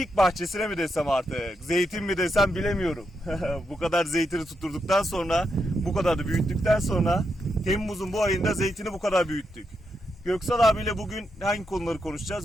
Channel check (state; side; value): normal; both; correlation 0.83